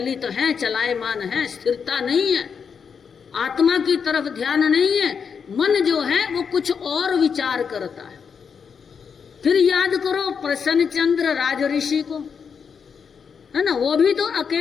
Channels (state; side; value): quieter; right; 6.4 dB